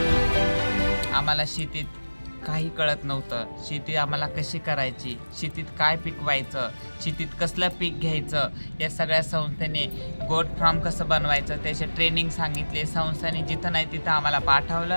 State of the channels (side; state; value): both; inverted; correlation -1.00